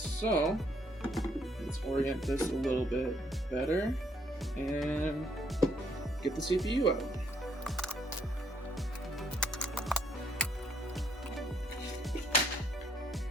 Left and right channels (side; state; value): both; normal; correlation 0.69